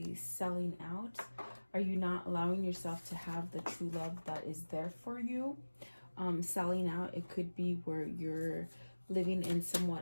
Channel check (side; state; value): both; inverted; correlation -1.00